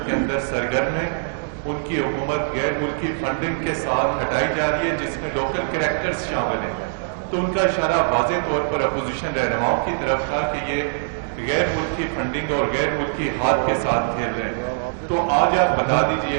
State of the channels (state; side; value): silent; left; digital silence